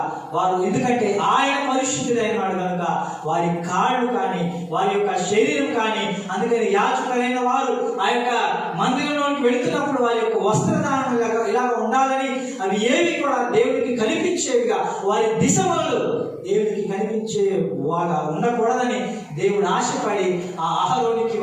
వారు, ఎందుకంటే ఆయన పరిశుద్ధుడైన వాడు కనుక వారి కాళ్ళు కానీ వారి యొక్క శరీరం కానీ, అందుకని యాజకులైన వారు ఆ యొక్క మందిరంలోకి వెళుతున్నప్పుడు వారి యొక్క వస్త్రధారణ ఇలా ఉండాలని, అవి ఏవి కూడా దేవుడికి కనిపించేవిగా, వారి దిశలు దేవుడికి కనిపించే వాగా ఉండకూడదని దేవుడు ఆశపడి ఆ అహరోనికి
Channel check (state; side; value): identical; both; correlation 1.00